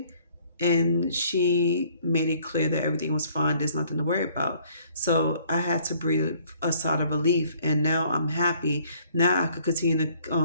and she made it clear that everything was fine. There's nothing to worry about. So I had to breathe a sigh of relief, and now I'm happy. Now I could continue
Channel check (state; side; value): inverted; both; correlation -0.61